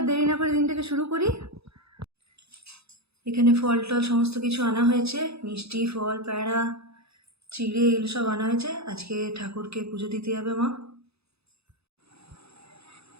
দেরি না করে দিনটাকে শুরু করি। এখানে ফল টল সমস্ত কিছু আনা হয়েছে, মিষ্টি, ফল, প্যাড়া, চিড়ে, এগুলো সব আনা হয়েছে। আজকে ঠাকুরকে পুজো দিতে যাবে মা।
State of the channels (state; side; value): late; left; 0.79 ms